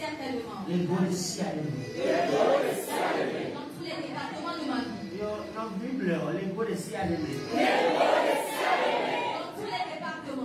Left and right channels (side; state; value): both; identical; correlation 1.00